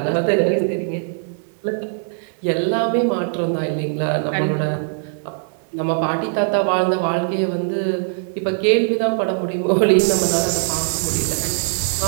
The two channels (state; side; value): silent; left; 58 dB below the other